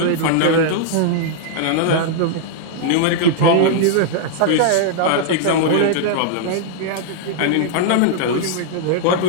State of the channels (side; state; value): both; different; correlation -0.01